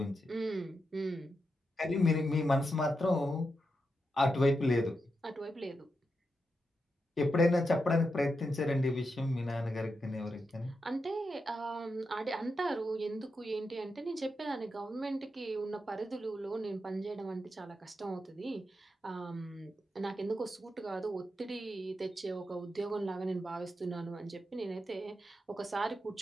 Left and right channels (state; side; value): normal; both; correlation 0.86